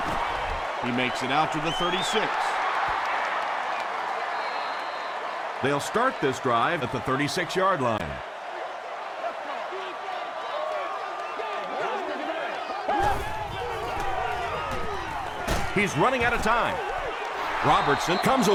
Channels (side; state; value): both; identical; correlation 1.00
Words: He makes it out to the 36. They'll start this drive at the 36-yard line. He's running out of time. Robertson comes